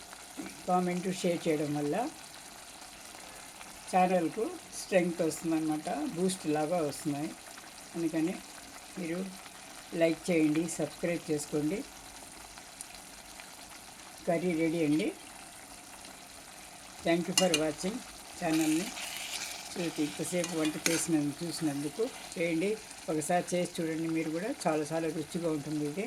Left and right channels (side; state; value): both; identical; correlation 1.00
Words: కామెంటు షేర్ చేయడం వల్ల ఛానల్కు స్ట్రెంగ్త్ వస్తుందన్నమాట, బూస్ట్ లాగా వస్తున్నాయి. అందుకని మీరు లైక్ చేయండి, సబ్స్క్రైబ్ చేసుకోండి. కర్రీ రెడీ అండి. థ్యాంక్ యూ ఫర్ వాచింగ్ ఛానల్ని. ఇంతసేపు వంట చూసినందుకు చేయండి. ఒకసారి చేసి చూడండి, మీరు కూడా చాలా రుచిగా ఉంటుంది ఇది.